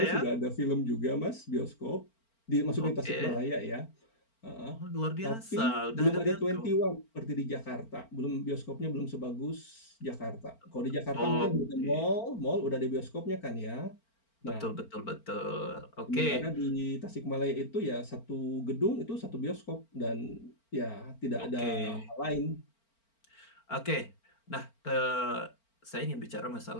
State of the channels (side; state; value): right; late; 4.4 ms